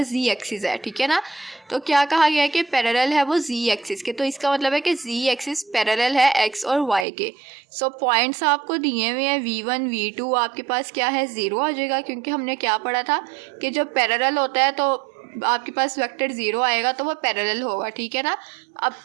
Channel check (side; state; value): left; drops out; at 7.1 s